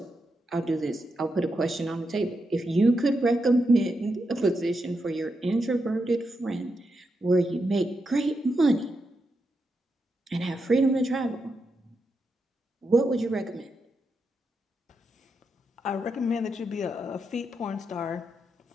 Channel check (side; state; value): both; normal; correlation 0.85